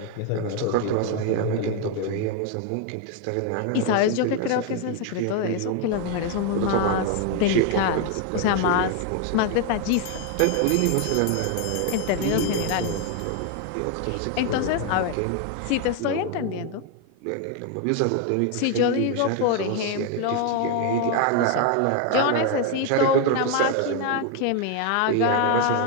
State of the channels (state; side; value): different; both; correlation 0.01